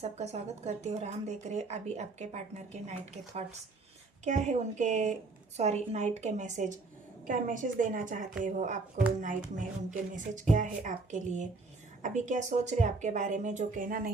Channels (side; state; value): left; quieter; 3.7 dB